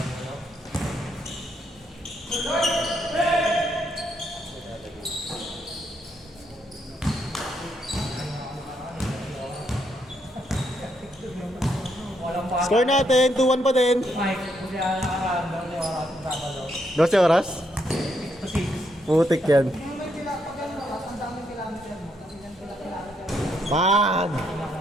Score natin, 2-1 pa din. Mike, hindi ako nakaramdam yung oras ng Sabado. 12 oras? 6 to 6. Putik yan. Yung may pag ano oras, ang daming kilometer mo. Kasi yan kilometer. Pag!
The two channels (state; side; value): normal; both; correlation 0.76